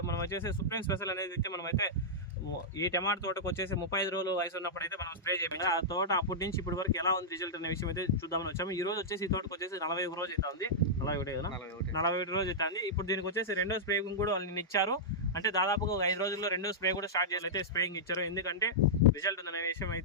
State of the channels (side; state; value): both; normal; correlation -0.09